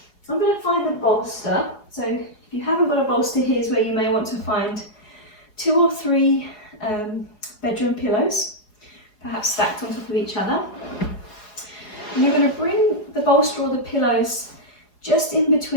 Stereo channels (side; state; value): right; late; 4.8 ms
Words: I'm going to find the bolster. So if you haven't got a bolster, here's where you may want to find 2 or 3 bedroom pillows, perhaps stacked on top of each other. And you're going to bring the bolster or the pillows just in